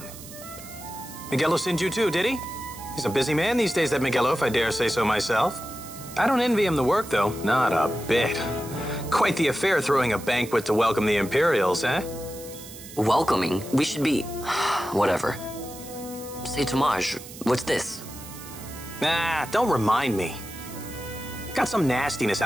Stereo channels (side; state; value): right; noise; hiss, 15 dB below the sound